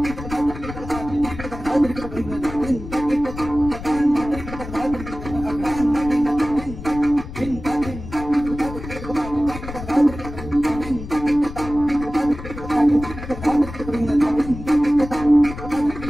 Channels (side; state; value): left; noise; rumble, 11 dB below the sound